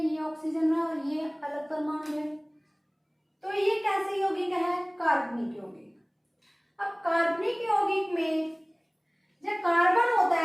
ऑक्सीजन रहा और ये अलग परमाणु रहे, तो ये कैसे यौगिक है? कार्बनिक यौगिक। अब कार्बनिक यौगिक में जब कार्बन होता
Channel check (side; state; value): both; identical; correlation 1.00